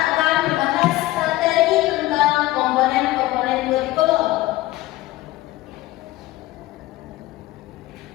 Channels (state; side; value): quieter; right; 17.1 dB